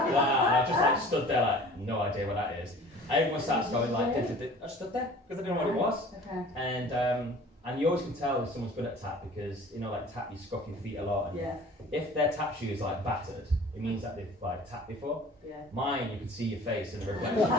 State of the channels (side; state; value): both; normal; correlation 0.46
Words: And I just stood there no idea what that is. Everyone starts going I stood there because I didn't know what it was. Okay. And you always can tell if someone's good at tap because tap, you scuff your feet a lot. And if their tap shoe is battered, it means that they've tapped before. Yeah. Mine, you could see your face in the reflection.